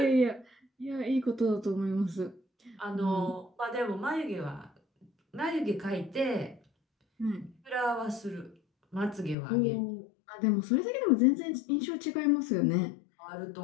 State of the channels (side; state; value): right; drops out; at 9.3 s